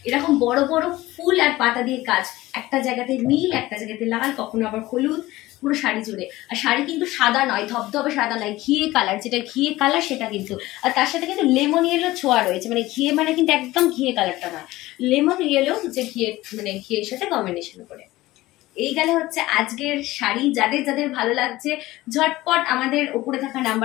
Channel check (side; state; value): right; quieter; 17.8 dB